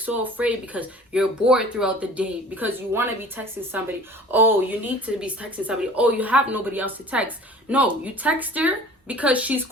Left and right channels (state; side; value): normal; both; correlation 0.44